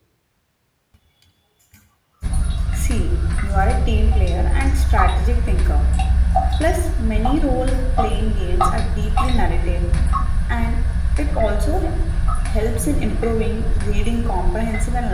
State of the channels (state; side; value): identical; both; correlation 1.00